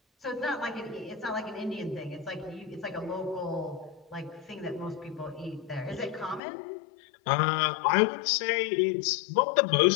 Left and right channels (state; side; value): drops out; right; at 6.4 s